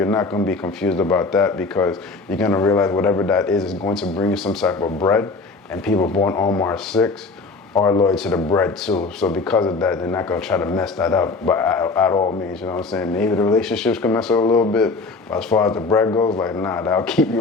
not going to be confused about that, because you're going to realize whatever that is going to bring you some type of bread, and people born on March 6th are loyal to the bread too. So because of that, they're not going to try to mess that up at all means, you know what I'm saying? Maybe the relationships can mess up a little bit, but as far as the bread goes, like, nah, that'll keep you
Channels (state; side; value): quieter; right; 3.9 dB